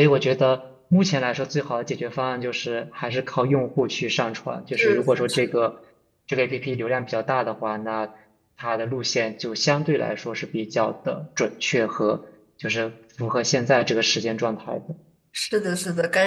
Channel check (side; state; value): both; identical; correlation 1.00